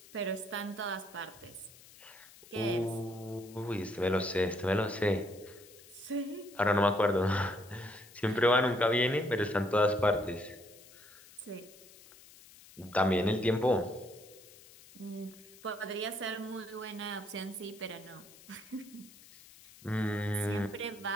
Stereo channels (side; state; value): left; noise; hiss, 22 dB below the sound